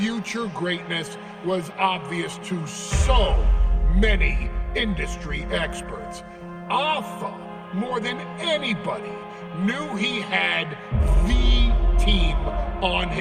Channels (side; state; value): both; identical; correlation 1.00